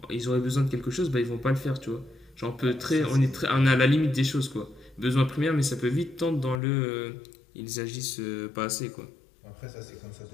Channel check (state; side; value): drops out; right; at 6.6 s